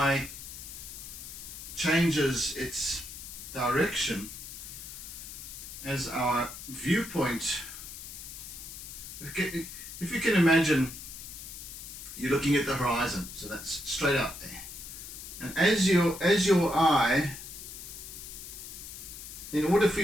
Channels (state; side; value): noise; left; hiss, 11 dB below the sound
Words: changes its direction, as our viewpoint, if you can imagine you're looking at the horizon, so that's straight up there, and as your eye, in order for